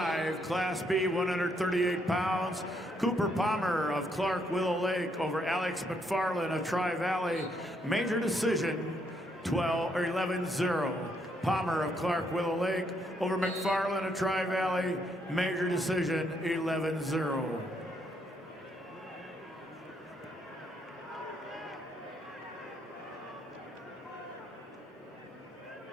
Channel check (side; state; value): both; normal; correlation 0.74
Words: Class B, 138 pounds. Cooper Palmer of Clark Willow Lake over Alex McFarland of Tri-Valley. Major decision 11-0. Palmer of Clark Willow Lake over McFarland of Tri-Valley. Major decision 11-0.